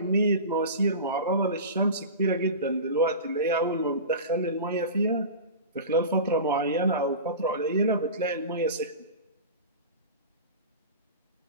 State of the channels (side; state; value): both; inverted; correlation -0.31